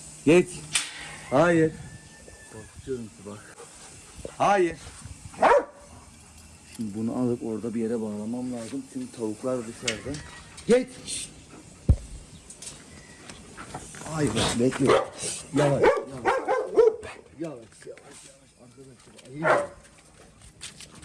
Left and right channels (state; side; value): identical; both; correlation 1.00